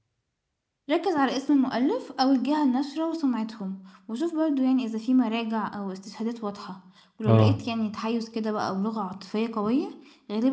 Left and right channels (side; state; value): both; identical; correlation 1.00